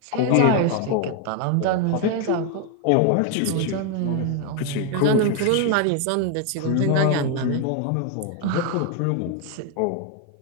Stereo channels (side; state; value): both; different; correlation 0.01